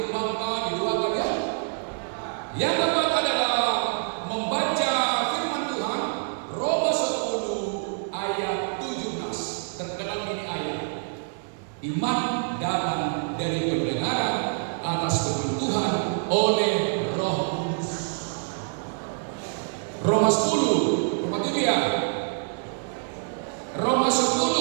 di dua ya. Yang keempat adalah membaca firman Tuhan. Roma 10 ayat 17. Terkenal ini ayat. Iman datang dari pendengaran atas firman Tuhan oleh Roh Kudus. Roma 10, Roma 7 ya. Roma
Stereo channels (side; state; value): left; silent; digital silence